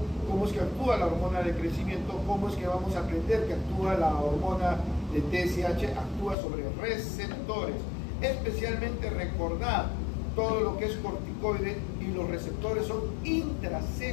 cómo es que actúa la hormona de crecimiento, cómo es que vamos a aprender que actúa la hormona de TSH, actúa sobre receptores, especialmente recordar todo lo que es corticoide, y los receptores son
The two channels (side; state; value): right; drops out; at 6.4 s